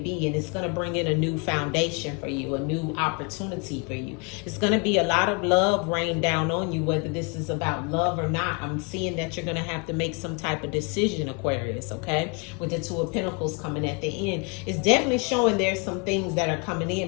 and it's going to bring in a new foundation for you, a new opportunity for you. It's going to be a lot of love rain down on you, whether this is about love or not. I'm seeing that you're going to have to make some type of decision, Aquarius, okay? With the Two of Pentacles coming at the end. It's definitely showing there's some things that are coming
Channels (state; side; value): quieter; right; 33.3 dB